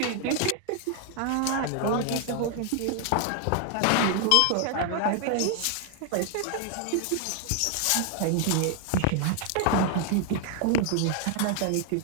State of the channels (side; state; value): both; different; correlation 0.00